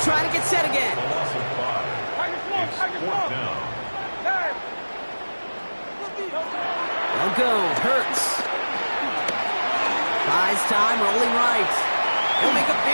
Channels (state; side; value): inverted; both; correlation -1.00